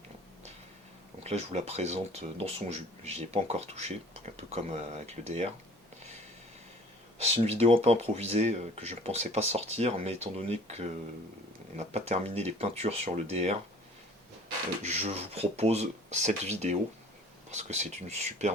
Donc là je vous la présente dans son jus, j'y ai pas encore touché, un peu comme avec le DR. C'est une vidéo un peu improvisée que je ne pensais pas sortir, mais étant donné qu'on n'a pas terminé les peintures sur le DR, je vous propose cette vidéo parce que c'est une super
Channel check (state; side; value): normal; both; correlation 0.49